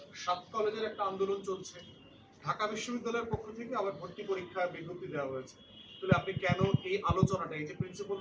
৭ কলেজের একটা আন্দোলন চলছে, ঢাকা বিশ্ববিদ্যালয়ের পক্ষ থেকে আবার ভর্তি পরীক্ষা বিজ্ঞপ্তি দেওয়া হয়েছে। তাহলে আপনি কেন এই আলোচনাটা, এই যে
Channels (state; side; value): identical; both; correlation 1.00